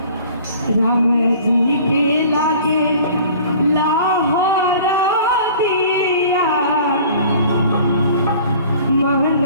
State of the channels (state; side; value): inverted; both; correlation -0.47